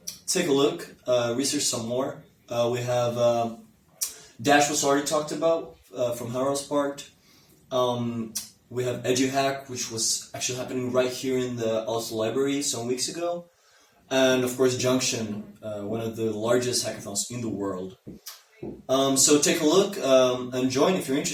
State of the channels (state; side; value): identical; both; correlation 1.00